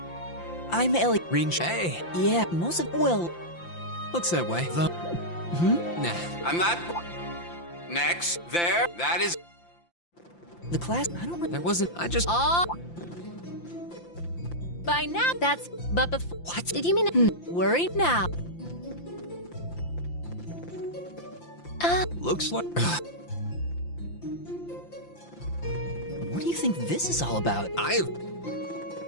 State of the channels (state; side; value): late; right; 5.8 ms